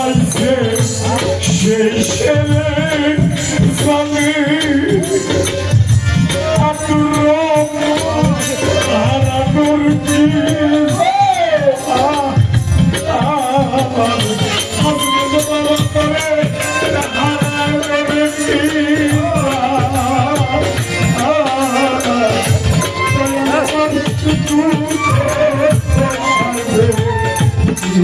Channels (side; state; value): both; identical; correlation 1.00